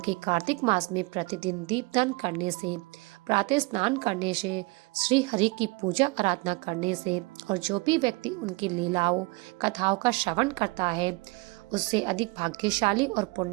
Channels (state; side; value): quieter; left; 26.0 dB